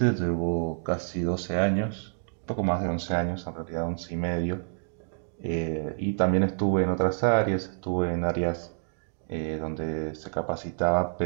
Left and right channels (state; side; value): silent; left; digital silence